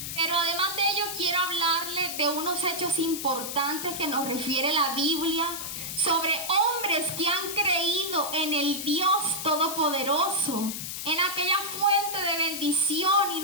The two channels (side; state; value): left; noise; hiss, 6 dB below the sound